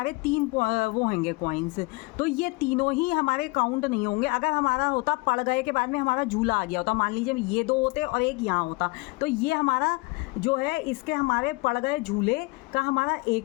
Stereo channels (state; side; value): quieter; right; 25.8 dB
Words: 3 वो होंगे कॉइन्स, तो ये तीनों ही हमारे काउंट नहीं होंगे। अगर हमारा होता पड़ गए के बाद में हमारा झूला आ गया होता, मान लीजिए ये 2 होते और एक यहाँ होता, तो ये हमारा जो है इसके हमारे पड़ गए झूले का हमारा